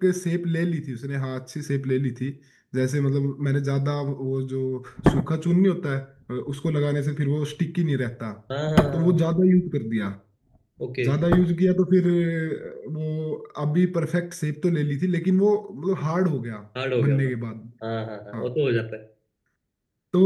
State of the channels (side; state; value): both; identical; correlation 1.00